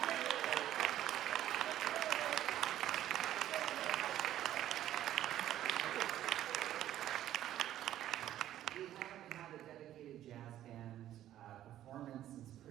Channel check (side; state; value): left; quieter; 12.4 dB